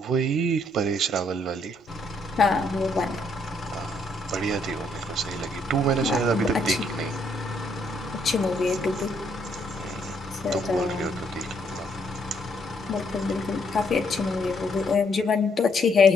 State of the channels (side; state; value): both; normal; correlation 0.71